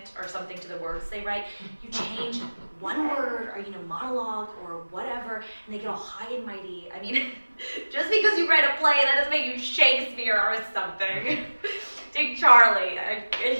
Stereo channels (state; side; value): inverted; both; correlation -1.00